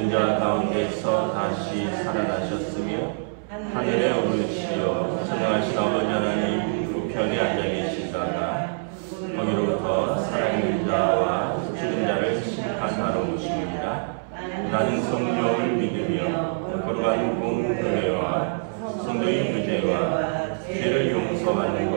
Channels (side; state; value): left; silent; 62 dB below the other